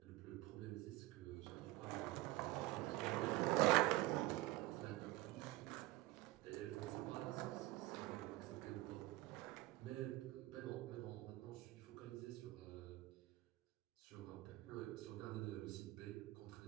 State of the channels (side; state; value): left; quieter; 18.7 dB